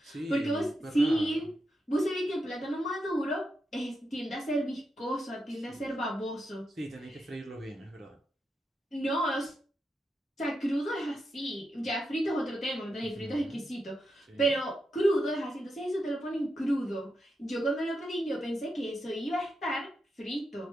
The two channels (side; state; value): both; normal; correlation 0.86